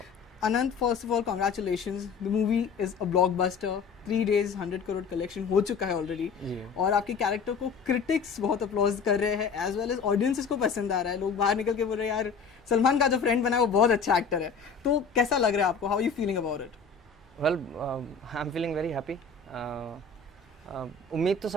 Anant, first of all, congratulations. The movie is a blockbuster. 3 days 100 crore collection हो चुका है already, और आपके character को critics बहुत applause कर रहे हैं, एज वेल एज ऑडियंसेस को पसंद आ रहा है. लोग बाहर निकल के बोल रहे हैं यार सलमान का जो फ्रेंड बना है वो बहुत अच्छा एक्टर है. तो कैसा लग रहा है आपको? How you feeling about it? Well, I am feeling very happy. उम्मीद तो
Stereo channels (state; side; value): quieter; right; 5.4 dB